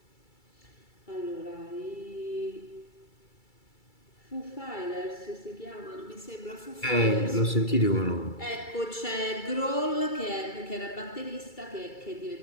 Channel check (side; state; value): right; late; 2.3 ms